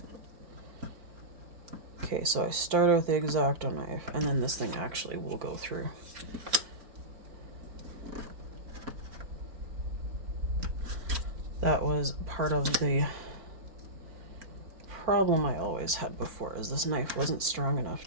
Okay, so I started with the X-Acto knife, and then this thing actually will go through. That was part of the problem I always had before, is this knife wasn't strong enough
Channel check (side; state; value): left; late; 4.5 ms